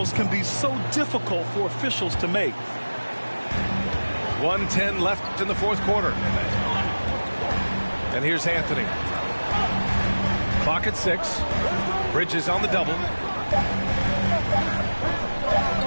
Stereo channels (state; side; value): inverted; both; correlation -1.00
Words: can be so difficult for officials to make. 1:10 left in the fourth quarter. And here's Anthony. Clock at 6. Bridges on the double.